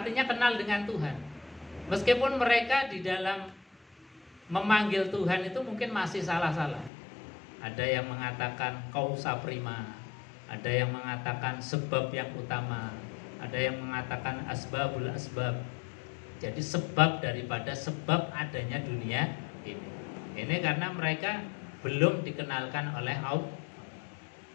kenal dengan Tuhan. Meskipun mereka di dalam memanggil Tuhan itu mungkin masih salah-salah. Ada yang mengatakan kausa prima, ada yang mengatakan sebab yang utama, ada yang mengatakan asbabul asbab. Jadi sebab daripada sebab adanya dunia ini. Ini karena mereka belum dikenalkan oleh Allah.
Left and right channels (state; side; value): drops out; right; at 6.9 s